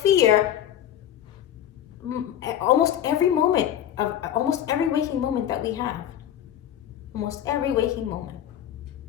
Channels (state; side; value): quieter; right; 10.7 dB